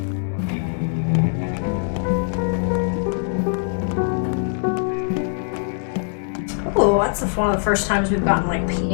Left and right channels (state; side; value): silent; right; 64 dB below the other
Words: Oh, that's one of the first times we've gotten like